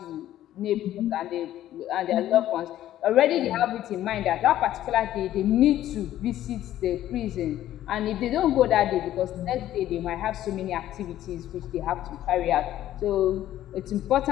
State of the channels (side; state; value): right; quieter; 12.9 dB